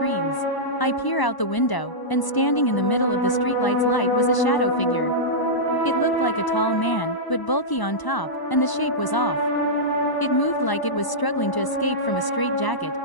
I peer out the window, and standing in the middle of the streetlight's light was a shadow figure. It looked like a tall man, but bulky on top, and the shape was off. It moved like it was struggling to escape from a straitjacket,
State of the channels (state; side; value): late; right; 1.0 ms